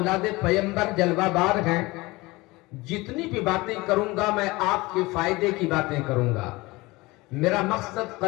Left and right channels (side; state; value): right; quieter; 22.0 dB